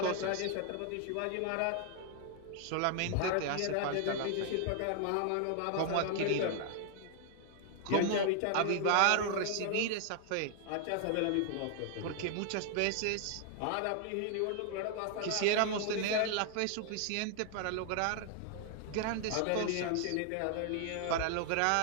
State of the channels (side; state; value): both; different; correlation 0.00